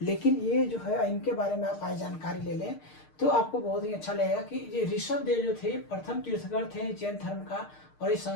लेकिन ये जो है, इनके बारे में आप आज जानकारी ले लें तो आपको बहुत ही अच्छा लगेगा कि ये ऋषभदेव जो थे प्रथम तीर्थंकर थे जैन धर्म का, और ये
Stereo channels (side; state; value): right; late; 6.6 ms